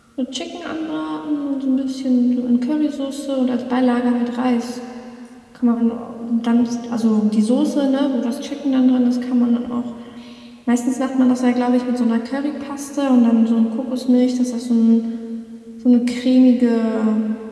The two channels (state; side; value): identical; both; correlation 1.00